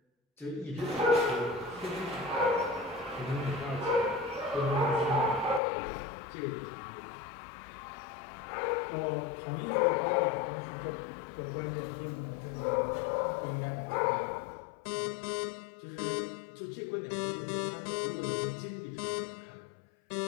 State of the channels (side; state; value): right; drops out; at 5.6 s